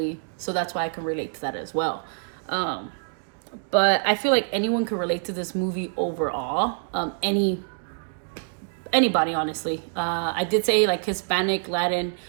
so that's why I can relate to that as well. But I feel like anyone can relate to this movie overall. Anybody, honestly. I did say like Hispanic, Latin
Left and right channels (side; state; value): left; silent; 61 dB below the other